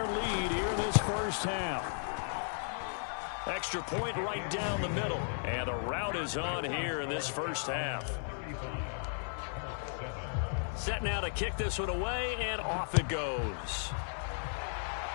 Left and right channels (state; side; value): silent; right; 54 dB below the other